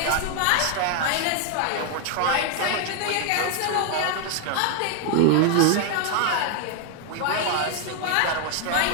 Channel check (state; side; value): different; both; correlation 0.00